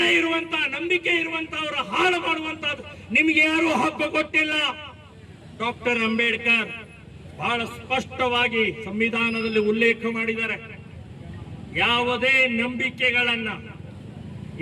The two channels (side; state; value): both; identical; correlation 1.00